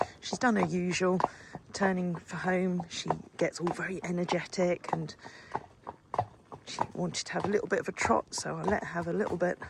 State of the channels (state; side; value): identical; both; correlation 1.00